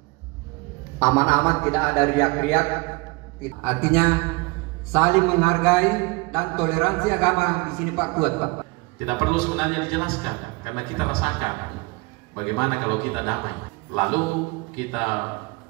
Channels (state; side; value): quieter; left; 25.8 dB